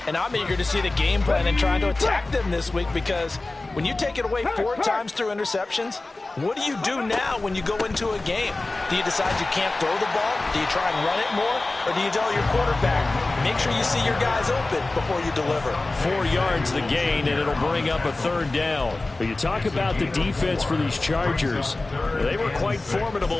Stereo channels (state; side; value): quieter; right; 3.1 dB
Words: And I'm eager to see the game plan and trying to attack them this week, because when you take it away 4 times through interceptions, what do you do now when you go into a game? Do you decide you can't throw the ball? Do you try and run it more? Or do you tell your quarterback, make sure you see your guys open before you deliver? 4 yards the gain, and it'll bring up a third down. But you talk about the defense for these Chargers. They were quite